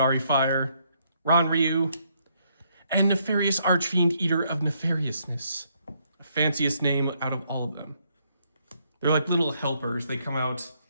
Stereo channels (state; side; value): inverted; both; correlation -0.72